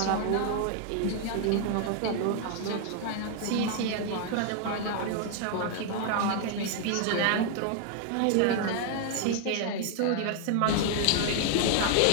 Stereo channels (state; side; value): different; both; correlation 0.00